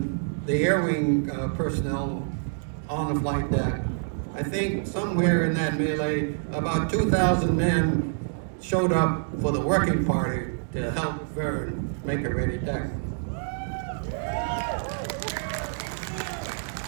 the air wing personnel on the flight deck, I think somewhere in that melee, about 2,000 men showed up for the working party to help Vern make a ready deck.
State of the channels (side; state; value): left; silent; digital silence